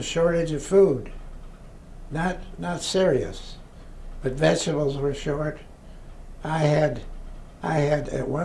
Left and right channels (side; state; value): both; identical; correlation 1.00